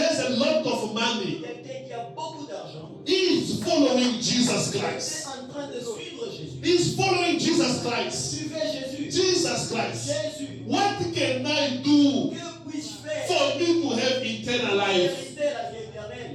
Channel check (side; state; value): both; identical; correlation 1.00